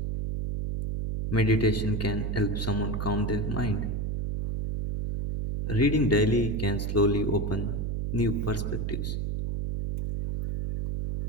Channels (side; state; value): right; noise; hum, 1 dB below the sound